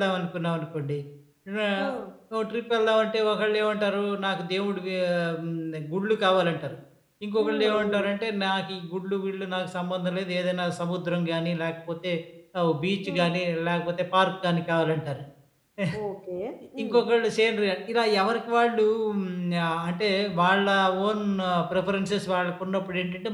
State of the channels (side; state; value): both; identical; correlation 1.00